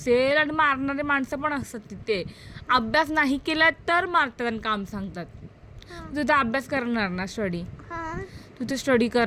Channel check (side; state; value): both; identical; correlation 1.00